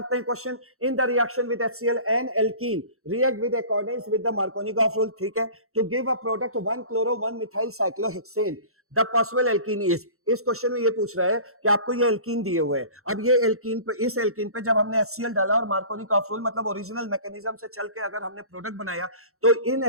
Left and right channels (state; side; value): late; left; 0.63 ms